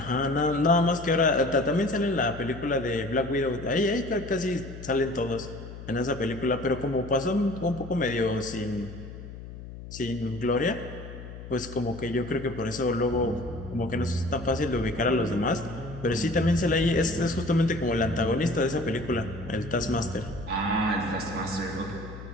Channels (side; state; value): left; noise; hum, 13 dB below the sound